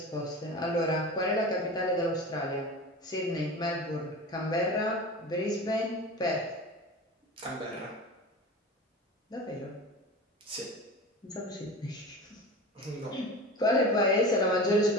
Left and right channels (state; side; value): normal; both; correlation 0.32